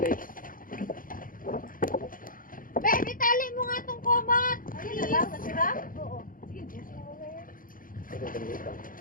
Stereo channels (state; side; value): late; right; 0.40 ms